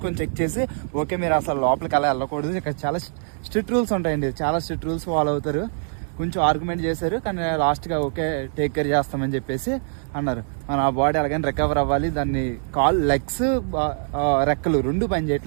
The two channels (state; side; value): silent; left; digital silence